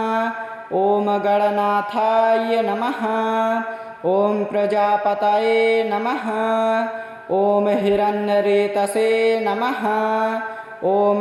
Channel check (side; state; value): both; identical; correlation 1.00